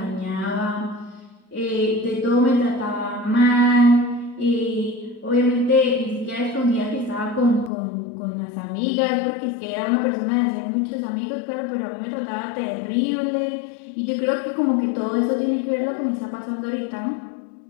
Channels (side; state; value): right; drops out; at 7.7 s